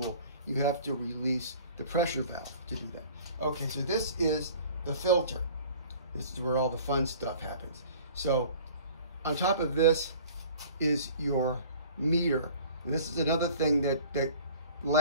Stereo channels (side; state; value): both; inverted; correlation -0.47